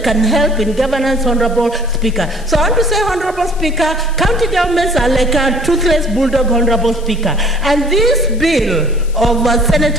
can help in governance, Honorable Speaker. So I want to say, Honorable Speaker, county governments are like a toothless bulldog, Honorable Speaker. And this bill of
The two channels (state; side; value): noise; left; hiss, 22 dB below the sound